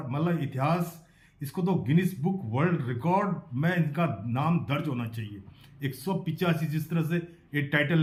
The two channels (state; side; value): identical; both; correlation 1.00